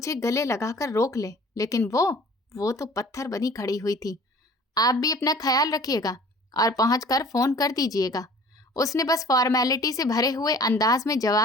गले लगाकर रोक ले, लेकिन वो तो पत्थर बनी खड़ी हुई थी। आप भी अपना ख्याल रखिएगा और पहुंचकर फोन कर दीजिएगा। उसने बस फॉर्मेलिटी से भरे हुए अंदाज में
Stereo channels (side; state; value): both; normal; correlation 0.49